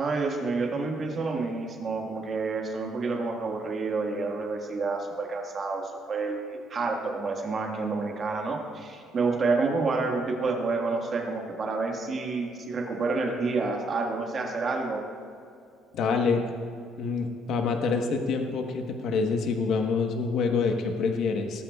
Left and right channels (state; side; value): normal; both; correlation 0.69